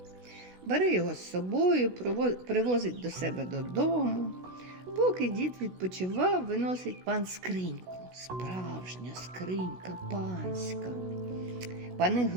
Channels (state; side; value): late; left; 16 ms